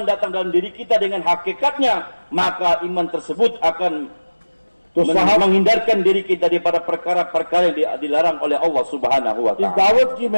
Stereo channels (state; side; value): inverted; both; correlation -1.00